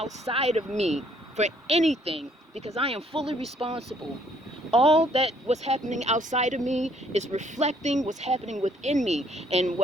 of me for anything, because I am fully responsible. All that what's happening outside of me is reflecting what's happening within me. And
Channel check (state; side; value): normal; both; correlation 0.65